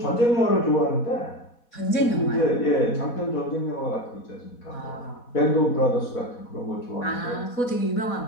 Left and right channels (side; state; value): right; late; 4.1 ms